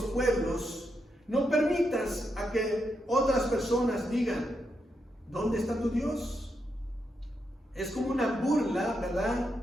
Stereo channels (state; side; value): normal; both; correlation 0.83